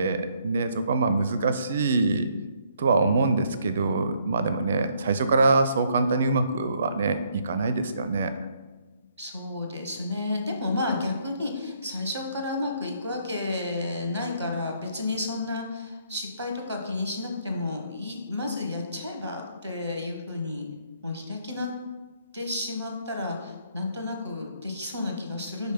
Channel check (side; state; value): both; inverted; correlation -0.69